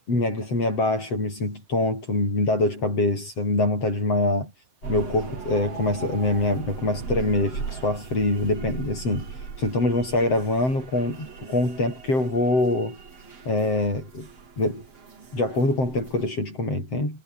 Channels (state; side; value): late; right; 7.8 ms